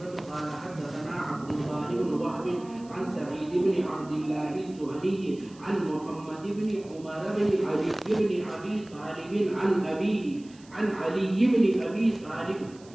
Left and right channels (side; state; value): right; noise; hiss, 25 dB below the sound